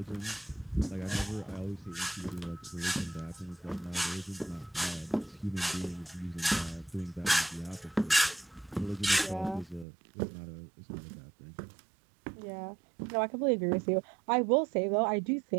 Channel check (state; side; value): drops out; left; at 9.9 s